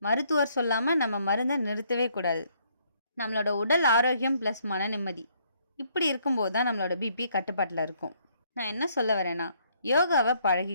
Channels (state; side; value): inverted; both; correlation -0.68